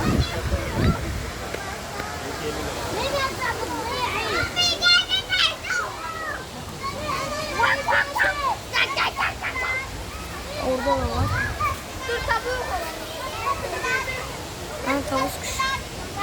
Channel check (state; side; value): identical; both; correlation 1.00